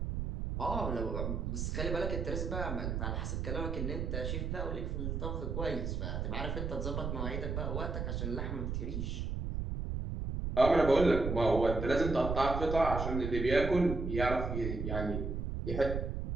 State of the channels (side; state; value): right; noise; rumble, 2 dB below the sound